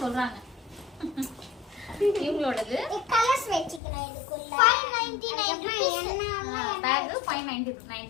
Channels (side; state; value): right; drops out; at 3.8 s